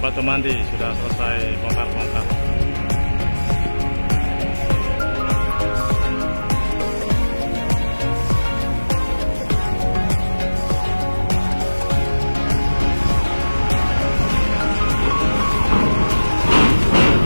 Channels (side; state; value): both; inverted; correlation -1.00